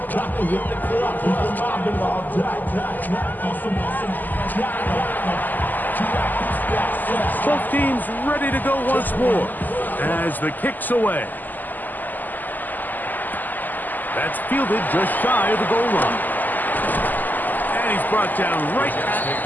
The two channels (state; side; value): late; right; 0.085 ms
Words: Both teams ready to go once more as the kick's away. That's fielded just shy of the goal line. And he's brought down right